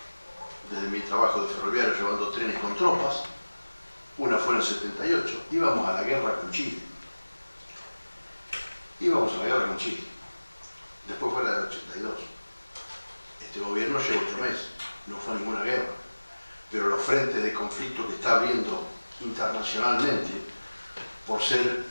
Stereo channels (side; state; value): both; inverted; correlation -1.00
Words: desde mi trabajo de ferroviario llevando trenes con tropas. Una fue en el 78, íbamos a la guerra con Chile. Íbamos a la guerra con Chile. Después fue la del 82. Este gobierno llevó 8 meses, no fue ninguna guerra. Pero los frentes de conflicto que está habiendo internacionalmente, por ser